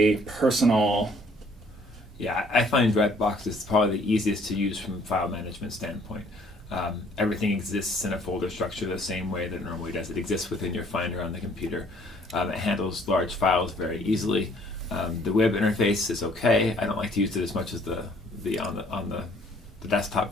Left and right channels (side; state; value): both; normal; correlation 0.60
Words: personal. Yeah, I find Dropbox is probably the easiest to use from a file management standpoint. Everything exists in a folder structure the same way that it normally does. It exists within your Finder on the computer. It handles large files very easily. The web interface is okay. I don't like to use it as much as the desktop